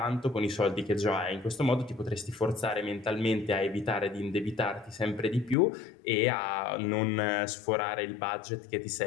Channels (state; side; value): drops out; right; at 5.6 s